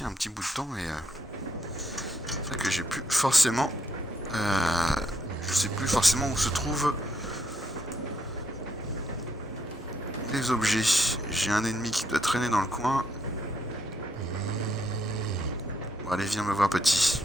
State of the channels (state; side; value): normal; both; correlation 0.75